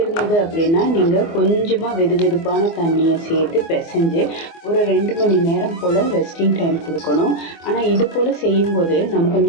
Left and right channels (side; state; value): right; late; 24 ms